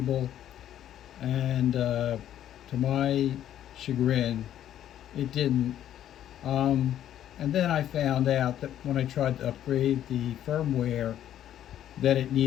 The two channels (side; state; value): right; quieter; 11.3 dB